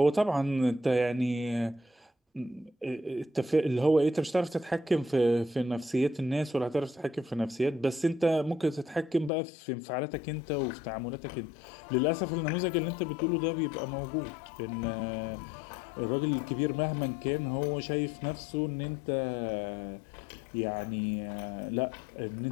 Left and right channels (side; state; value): right; drops out; at 9.3 s